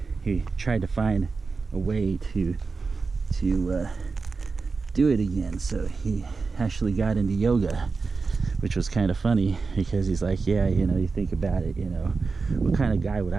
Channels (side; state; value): left; quieter; 4.4 dB